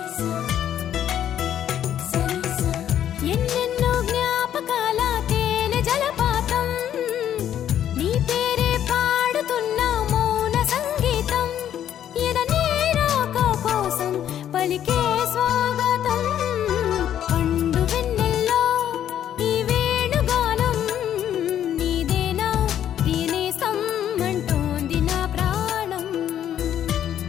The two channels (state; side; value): quieter; right; 10.5 dB